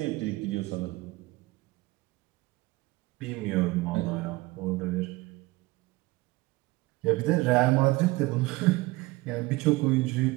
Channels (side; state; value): left; quieter; 21.0 dB